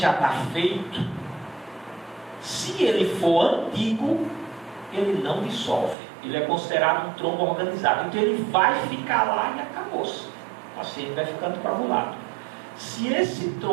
está feito, se ele for antigo, ele não dissolve. Ele é considerado um trombo organizado. Então ele vai ficar lá e acabou-se. O paciente vai ficando coagulado. Se esse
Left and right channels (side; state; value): left; drops out; at 6.0 s